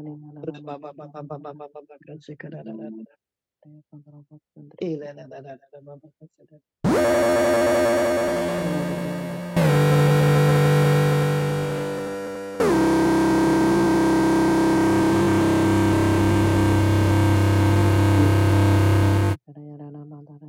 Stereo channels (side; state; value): both; identical; correlation 1.00